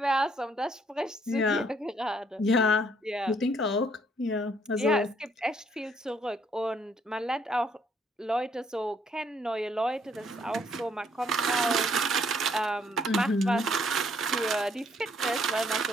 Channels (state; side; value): normal; both; correlation 0.67